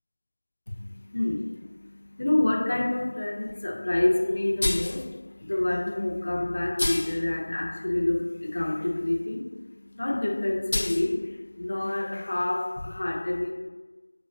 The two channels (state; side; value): inverted; both; correlation -1.00